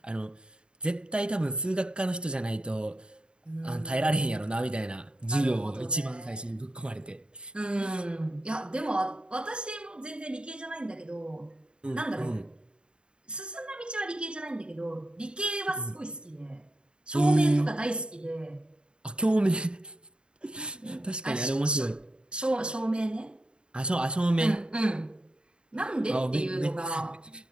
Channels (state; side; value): late; left; 0.052 ms